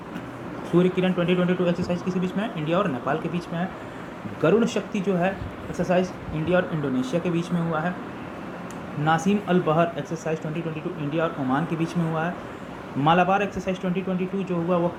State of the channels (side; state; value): both; identical; correlation 1.00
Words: सूर्य किरण 2022 एक्सरसाइज किसी बीच में है? इंडिया और नेपाल के बीच में है। गरुड़ शक्ति जो है एक्सरसाइज इंडिया और इंडोनेशिया के बीच में हुआ है। नासिम अल बहर एक्सरसाइज 2022 इंडिया और ओमान के बीच में हुआ है। मालाबार एक्सरसाइज 2022 जो हुआ वो